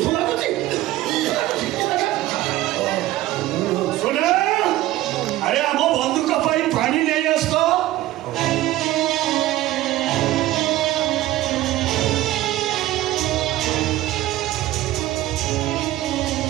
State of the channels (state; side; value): quieter; left; 15.6 dB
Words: ଶୁଣ ଆରେ ଆମ ବନ୍ଧୁକ ପାଇଁ ପାଣି ନେଇ ଆସ ତ।